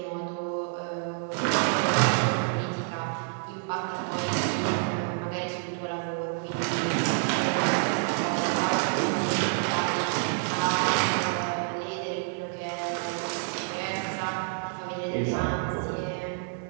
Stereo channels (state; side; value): silent; left; 59 dB below the other